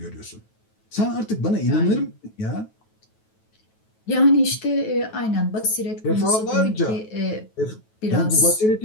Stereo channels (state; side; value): late; right; 9.2 ms